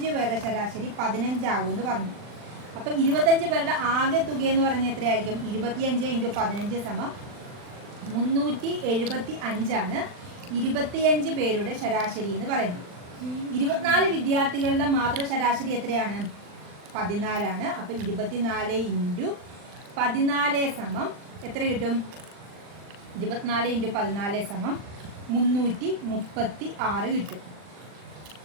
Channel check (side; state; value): left; late; 39 ms